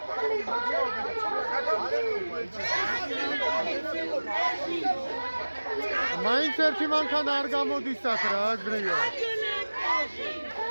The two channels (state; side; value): inverted; both; correlation -1.00